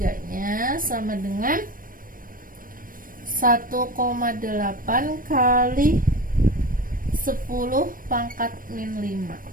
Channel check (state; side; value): late; left; 0.40 ms